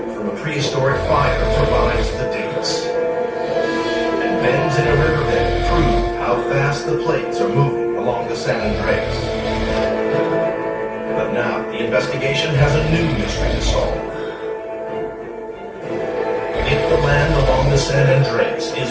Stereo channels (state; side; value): identical; both; correlation 1.00